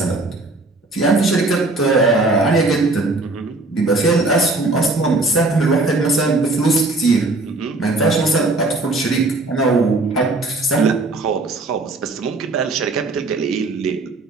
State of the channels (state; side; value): quieter; left; 3.1 dB